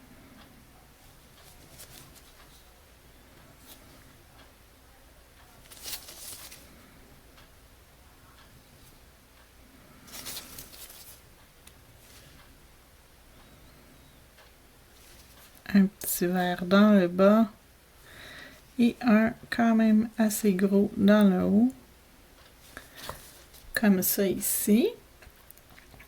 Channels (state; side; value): identical; both; correlation 1.00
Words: Un petit vert dans le bas. Et un quand même assez gros dans le haut. Comme ça ici.